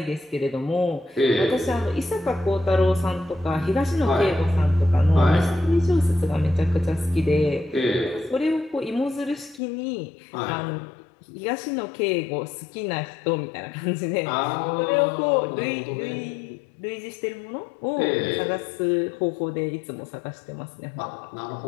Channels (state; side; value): drops out; right; at 9.6 s